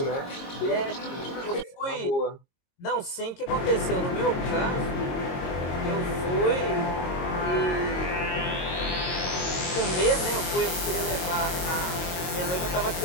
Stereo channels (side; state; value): right; late; 22 ms